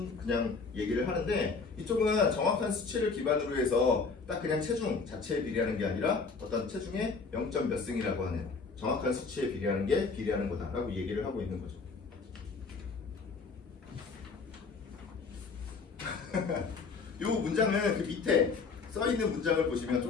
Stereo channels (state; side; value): quieter; right; 4.6 dB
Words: 그냥 얘기를 하는데 이쪽은 정확한 수치를 기반으로 해서 딱 그냥 체중 자체에 비례하는 게 아니라 어떤 체중의 0. 몇 승이라고 하는 정확한 수치에 비례하는 게 비례하는 거다라고 얘기를 하고 있는 거죠. 이 문장은 그 밑에 써 있는 문장을 보시면